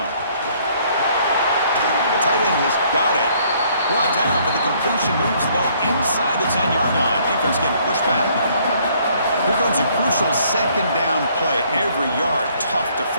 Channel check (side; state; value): both; inverted; correlation -0.63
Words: The tight end has got it. Brought down, but the completion moves the ball inside the 10-yard line. Defense getting pushed back. Here comes a crucial second down play. Every yard tough to